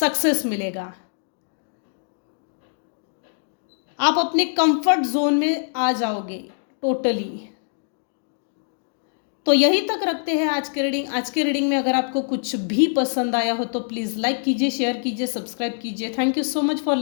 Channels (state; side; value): silent; right; digital silence